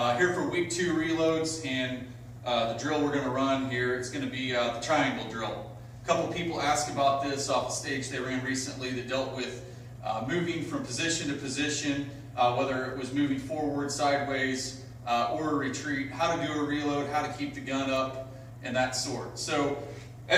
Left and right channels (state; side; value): identical; both; correlation 1.00